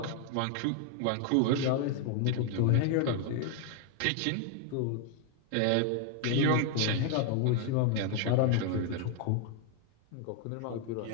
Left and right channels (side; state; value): both; different; correlation 0.00